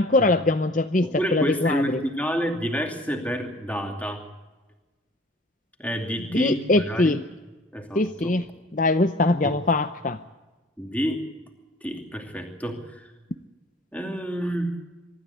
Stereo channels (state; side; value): normal; both; correlation 0.50